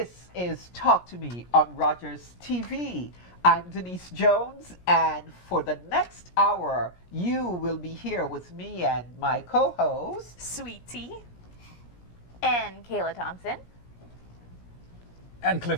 is Talk to Me on Rogers TV. I'm Denise Jones, and for the next hour, you will be here with me and my co-host, Sweetie, and Kayla Thompson. And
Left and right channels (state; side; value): late; right; 17 ms